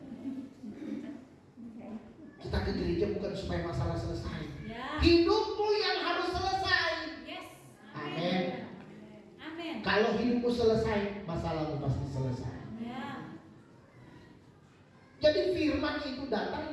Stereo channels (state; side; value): identical; both; correlation 1.00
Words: Kita ke gereja bukan supaya masalah selesai. Ya. Hidupmu yang harus selesai. Yes. Amin. Amin. Kalau hidupmu selesai, masalahmu pasti selesai. Ya. Jadi firman itu